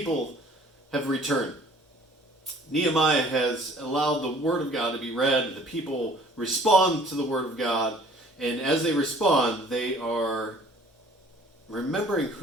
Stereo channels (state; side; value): normal; both; correlation 0.53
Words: have returned. Nehemiah has allowed the Word of God to be read, the people respond to the Word of God, and as they respond, they are remembering